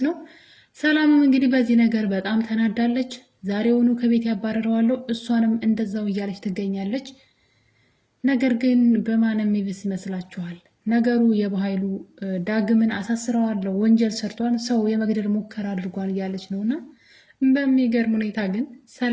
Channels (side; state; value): both; identical; correlation 1.00